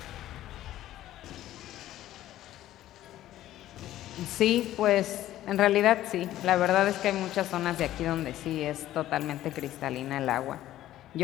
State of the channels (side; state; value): right; quieter; 13.7 dB